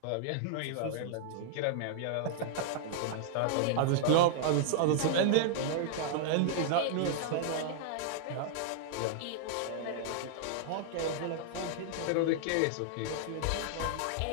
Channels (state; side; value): different; both; correlation -0.01